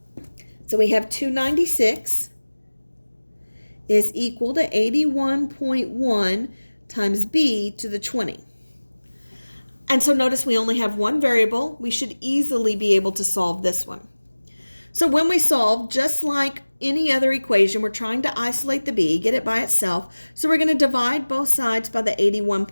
So we have 296 is equal to 81.1 times b to the 20. And so notice we only have one variable. We should easily be able to solve this one. So when we solve, just like any other equation, we're trying to isolate the b, get it by itself. So we're going to divide both sides by the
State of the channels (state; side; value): inverted; both; correlation -1.00